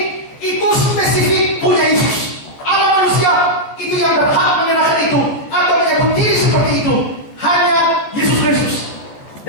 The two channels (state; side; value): late; right; 14 ms